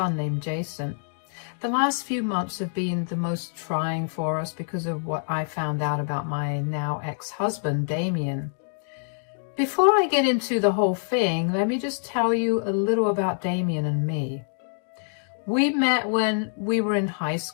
named Jason. The last few months have been the most trying for us because of what I found out about my now ex-husband, Damien. Before I get into the whole thing, let me just tell you a little about Damien and me. We met when we were in high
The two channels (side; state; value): right; silent; digital silence